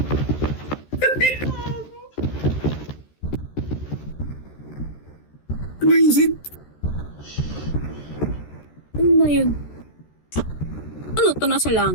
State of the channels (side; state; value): right; late; 13 ms